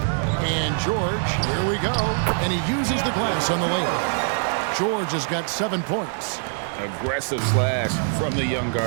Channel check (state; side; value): silent; left; 60 dB below the other